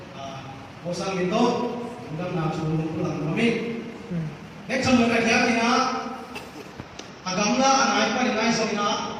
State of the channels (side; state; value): both; identical; correlation 1.00